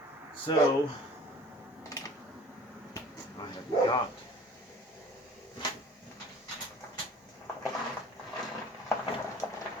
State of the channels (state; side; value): normal; both; correlation 0.47